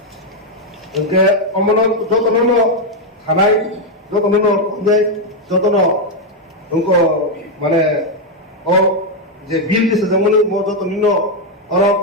ওকে অমন যতন থানায় যতন যতন উঙ্ক মানে ও যে বিল দিছে যেমন যতন অর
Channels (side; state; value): both; normal; correlation 0.02